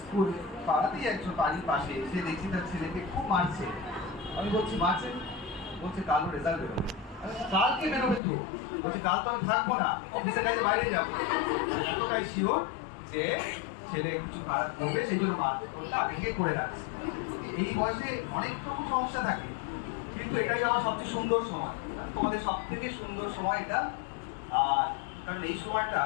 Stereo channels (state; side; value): drops out; right; at 8.2 s